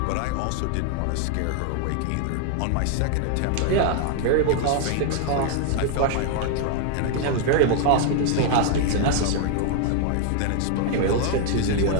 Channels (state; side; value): different; both; correlation 0.00